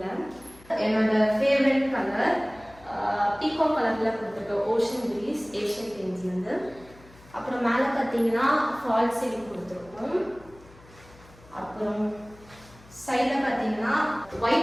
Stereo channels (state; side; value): noise; left; hum, 24 dB below the sound